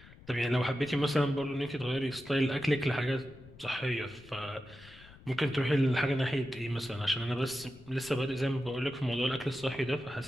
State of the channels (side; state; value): left; noise; rumble, 21 dB below the sound